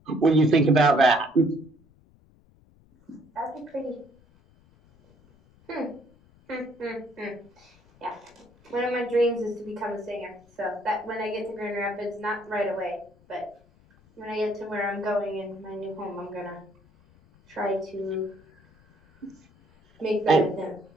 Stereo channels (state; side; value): noise; left; rumble, 29 dB below the sound